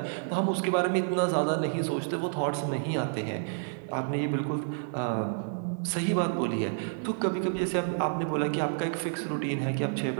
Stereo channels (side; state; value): left; silent; digital silence